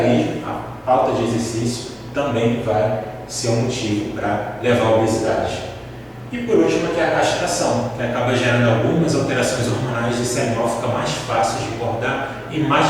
a falta de exercício, também vai ser um motivo para levar à obesidade. E por último aqui é a castração, que acaba gerando algumas alterações hormonais e esse animal fica mais fácil de engordar e mais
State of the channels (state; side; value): identical; both; correlation 1.00